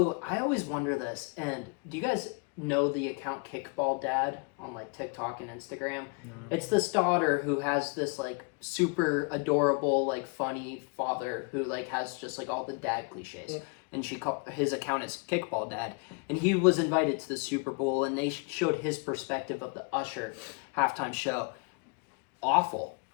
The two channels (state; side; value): quieter; right; 32.5 dB